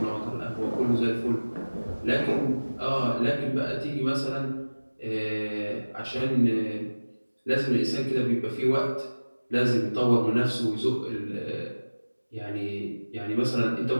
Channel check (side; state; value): both; inverted; correlation -1.00